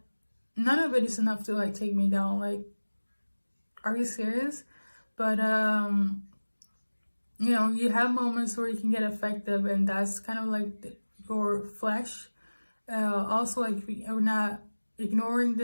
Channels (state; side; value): inverted; both; correlation -1.00